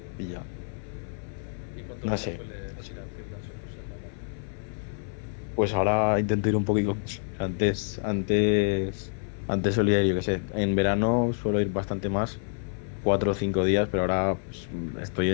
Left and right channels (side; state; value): right; silent; 59 dB below the other